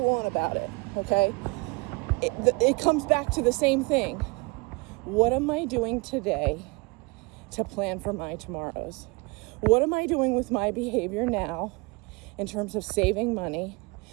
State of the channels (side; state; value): left; quieter; 28.1 dB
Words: on about it, okay? It comes back to the same thing. What am I doing today to plan for my tomorrows? What am I doing with my behavior now in terms of saving money